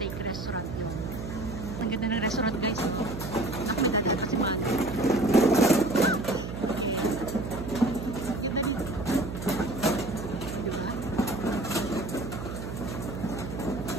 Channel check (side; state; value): right; noise; hum, 7 dB below the sound